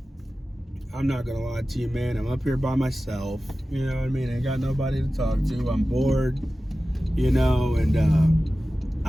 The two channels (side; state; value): both; normal; correlation 0.95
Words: not gonna lie to you, man. I'm up here by myself. You know what I mean? Ain't got nobody to talk to. I'm bored, you know, and